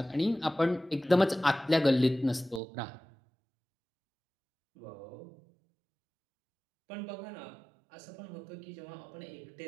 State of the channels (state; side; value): drops out; left; at 2.6 s